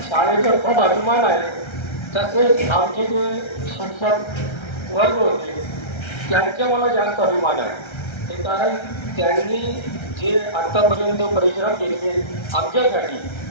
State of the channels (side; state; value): right; late; 1.3 ms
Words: शाळेचा खूप अभिमान आहे. तसेच आमचे जे शिक्षक वर्ग होते त्यांचा मला जास्त अभिमान आहे. ते कारण त्यांनी जे आत्तापर्यंत परिश्रम केले आमच्यासाठी